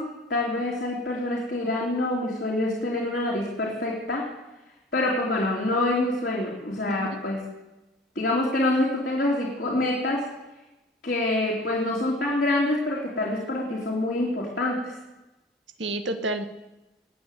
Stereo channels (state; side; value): normal; both; correlation 0.44